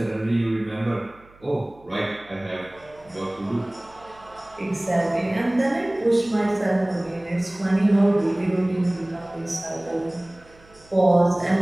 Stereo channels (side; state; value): right; noise; hum, 27 dB below the sound